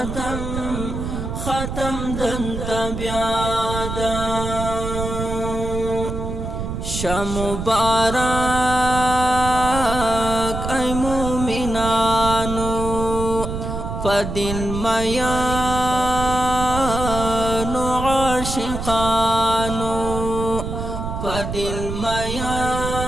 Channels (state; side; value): noise; right; rumble, 5 dB below the sound